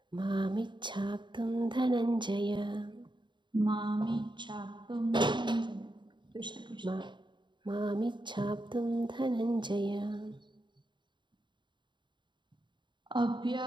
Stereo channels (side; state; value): left; late; 0.23 ms